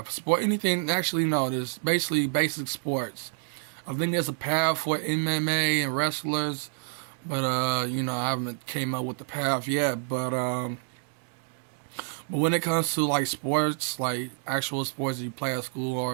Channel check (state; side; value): silent; left; digital silence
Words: Sport, anything, actually, no, there's basically basic sports. I think there's a path for MMA and wrestlers, but, I haven't came up with the path yet, but when it comes to like sports, like actual sports that you play at school